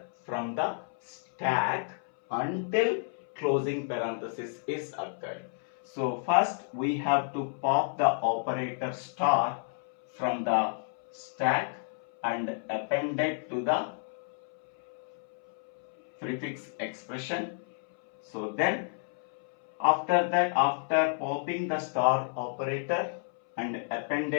from the stack until closing parenthesis is occurred. So first we have to pop the operator star from the stack and append it to the prefix expression. So then after that, after popping the star operator and append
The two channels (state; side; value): silent; right; 57 dB below the other